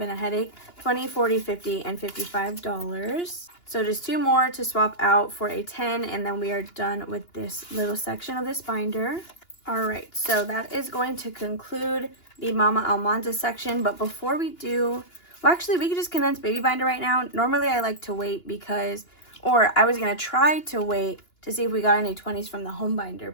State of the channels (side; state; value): right; late; 2.9 ms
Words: a headache. 20, 40, 50, and $55. So just 2 more to swap out for a 10, and then we are done with this little section of this binder. All right, so that is going to conclude the Mama Almanda section. But before we do, well, actually, we could just condense baby binder right now. Normally, I like to wait because, or I was going to try to wait to see if we got any 20s from the home